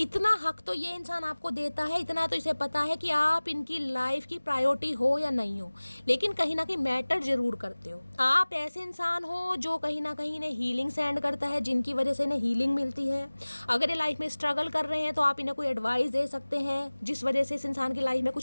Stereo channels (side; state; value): both; inverted; correlation -1.00